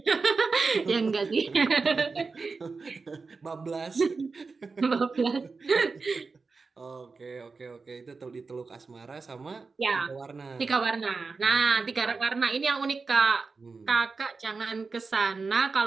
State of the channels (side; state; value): left; quieter; 4.4 dB